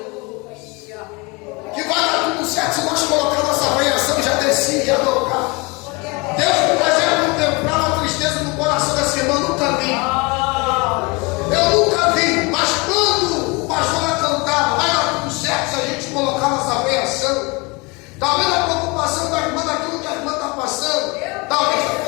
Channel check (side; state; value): right; quieter; 27.3 dB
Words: que vai dar tudo certo, se nós colocar nossa avaliação, já descia e ia tocar. Deus me fazia contemplar a tristeza no coração dessa irmã, nunca vi. Eu nunca vi, mas quando o pastor vai cantar, vai dar tudo certo se a gente colocar nossa avaliação. Talvez a preocupação da irmã daquilo que a irmã está passando, talvez está